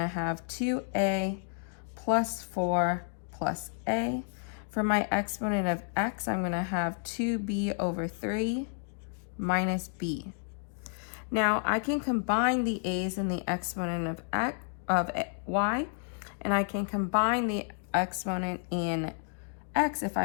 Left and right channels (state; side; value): silent; right; 57 dB below the other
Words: have 2a plus 4 plus a. For my exponent of x, I'm going to have 2b over 3 minus b. Now I can combine the a's and the exponent of y, and I can combine the exponent in x if